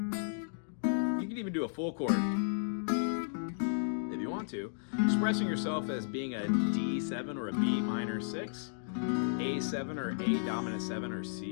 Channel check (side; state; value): right; silent; digital silence